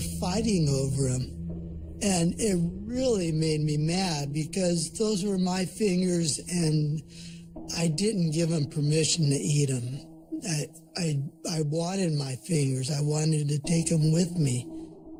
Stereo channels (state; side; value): identical; both; correlation 1.00